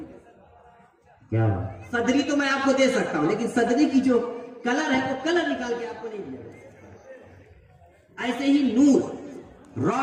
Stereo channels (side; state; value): both; identical; correlation 1.00